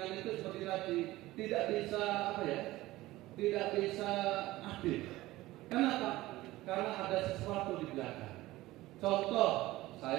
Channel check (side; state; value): left; quieter; 17.7 dB